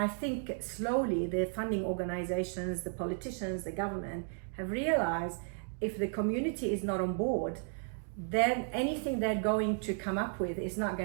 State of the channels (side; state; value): left; silent; 55 dB below the other